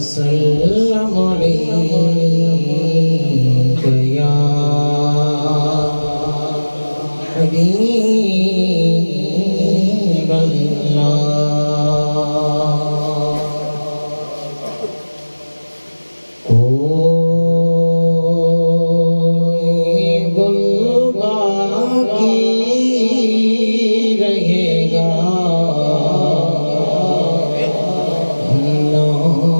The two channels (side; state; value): both; inverted; correlation -1.00